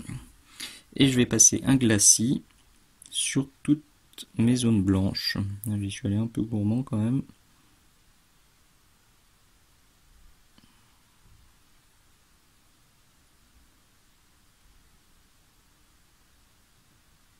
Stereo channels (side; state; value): both; identical; correlation 1.00